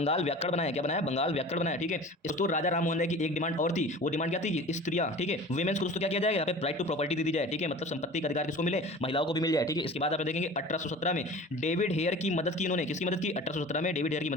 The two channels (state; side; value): normal; both; correlation 0.39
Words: व्याकरण बनाया। क्या बनाया, बंगाल व्याकरण बनाया, ठीक है। दोस्तों राजा राम मोहन राय की एक डिमांड और थी, वो डिमांड क्या थी कि स्त्रियां, ठीक है, वुमेन्स को दोस्तों क्या किया जाएगा, यहाँ पे राइट टू प्रॉपर्टी दे दी जाए, ठीक है। मतलब संपत्ति का अधिकार किसको मिले, महिलाओं को भी मिल जाए, ठीक है। इसके बाद आप देखेंगे 1817 में डेविड हेयर की मदद की इन्होंने, किसकी मदद की, 1817 में डेविड हेयर की